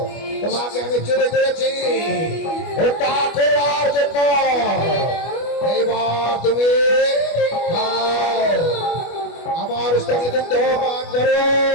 তোমাকে আমি চলে করেছি হত্যা করবার জন্য। এইবার তুমি খাও, আমার স্থানে দুগ্ধ পান করো।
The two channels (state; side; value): late; right; 25 ms